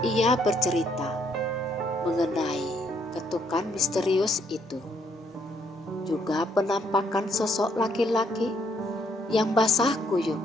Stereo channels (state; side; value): normal; both; correlation 0.70